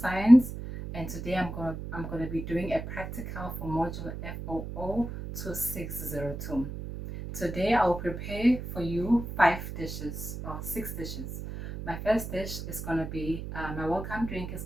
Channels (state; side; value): noise; right; hum, 8 dB below the sound